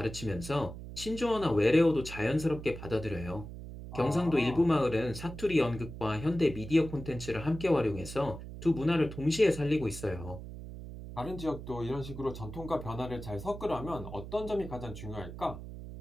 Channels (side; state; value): right; noise; hum, 11 dB below the sound